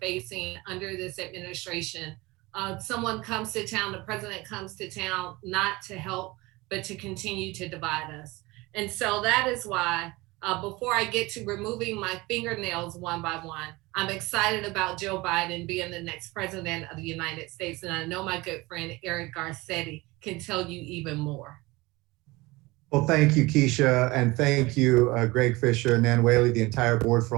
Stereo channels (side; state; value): left; quieter; 22.0 dB